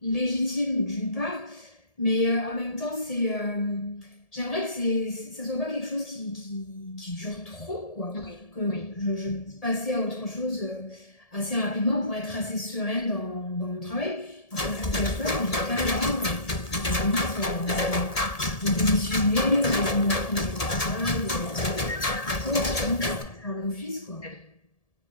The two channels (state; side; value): late; right; 1.7 ms